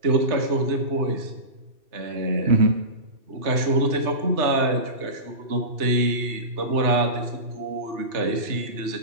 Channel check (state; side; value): late; left; 2.7 ms